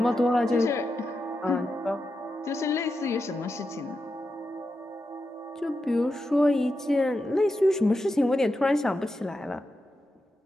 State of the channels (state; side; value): normal; both; correlation 0.88